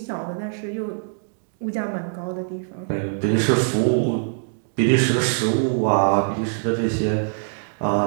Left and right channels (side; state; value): left; silent; digital silence